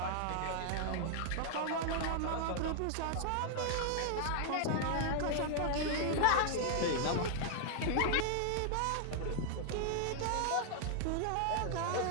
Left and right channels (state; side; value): different; both; correlation 0.00